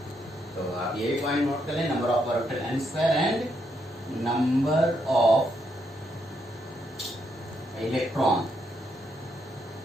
तो आप ये भी पॉइंट नोट कर लें, number of orbital n² and number of electron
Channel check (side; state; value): both; normal; correlation 0.78